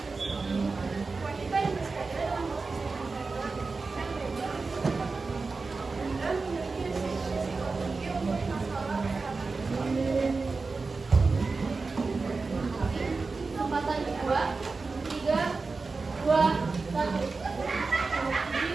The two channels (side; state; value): left; quieter; 4.1 dB